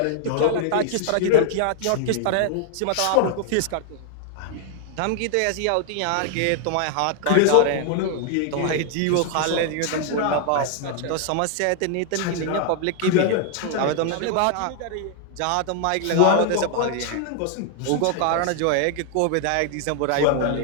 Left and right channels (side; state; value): both; different; correlation 0.00